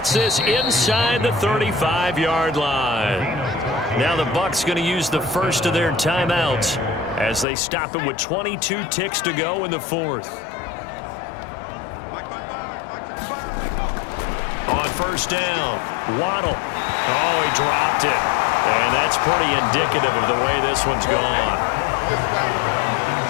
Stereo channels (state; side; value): drops out; right; at 7.5 s